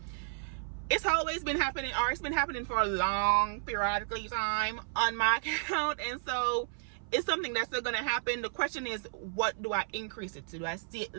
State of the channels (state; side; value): silent; left; 56 dB below the other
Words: it's always been happening, or it's been happening for a long periodically time on my account. And so it's something that's still going to happen. The question is, what do I increase it to? Do I